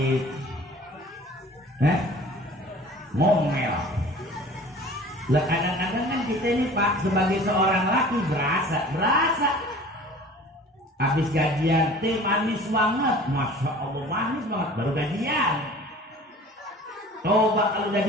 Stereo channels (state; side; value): normal; both; correlation 0.45